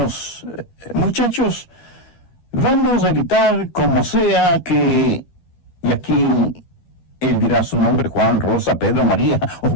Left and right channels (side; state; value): right; late; 12 ms